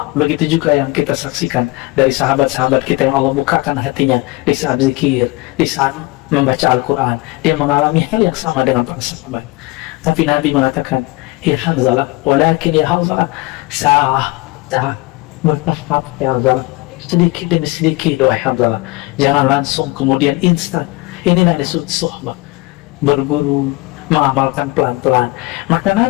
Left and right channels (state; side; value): quieter; right; 22.0 dB